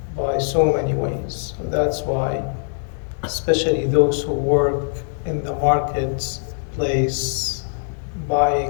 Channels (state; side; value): silent; right; digital silence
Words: by so many ways. So that's why, especially those who work in the marketplace,